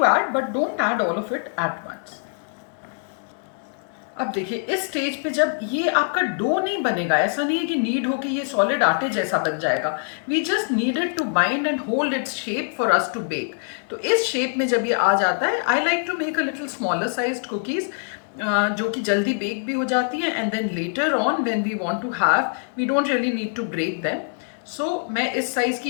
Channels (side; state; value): right; silent; 63 dB below the other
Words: add but don't add all of it at once. अब देखिए इस स्टेज पे जब ये आपका डो नहीं बनेगा, ऐसा नहीं है कि नीड हो कि ये सॉलिड आटे जैसा बन जाएगा। We just needed to bind and hold its shape for us to bake. तो इस शेप में जब ये आ जाता है, I like to make a little smaller sized cookies जो कि जल्दी बेक भी हो जाती हैं, and then later on when we want to have, we don't really need to break them. So मैं इस साइज़ की,